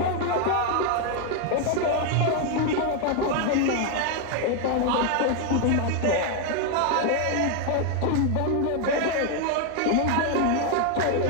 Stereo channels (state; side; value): different; both; correlation 0.01